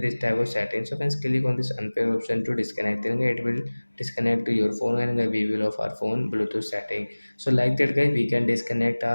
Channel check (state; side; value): inverted; both; correlation -1.00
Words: type of settings. So friends click on this unpair option to disconnect. Then it will disconnect to your phone and we will of our phone Bluetooth setting. So like that guys we can disconnect